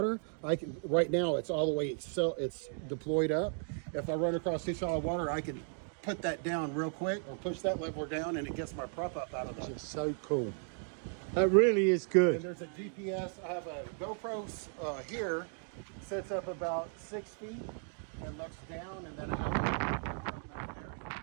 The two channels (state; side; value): silent; left; 54 dB below the other